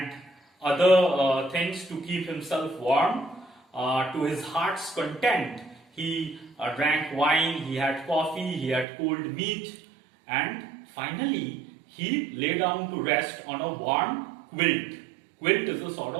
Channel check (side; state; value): left; drops out; at 8.8 s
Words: other things to keep himself warm. To his heart's content, he drank wine, he had coffee, he had cold meat, and finally he lay down to rest on a warm quilt. Quilt is a sort